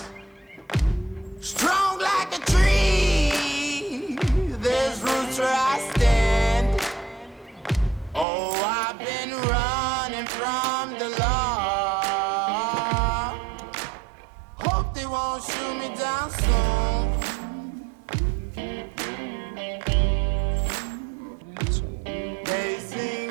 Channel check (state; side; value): drops out; left; at 8.2 s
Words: strong like a tree. There's roots where I stand. Oh, I've been running from the law. Hope they won't shoot me down soon. They sing